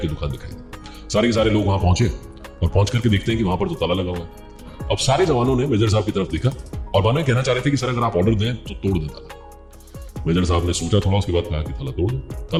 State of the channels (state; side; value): identical; both; correlation 1.00